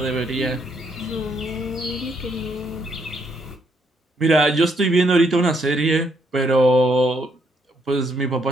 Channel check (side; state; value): both; normal; correlation 0.73